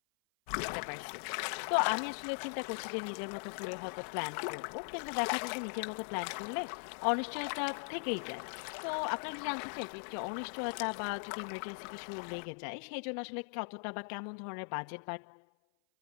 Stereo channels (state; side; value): silent; right; 52 dB below the other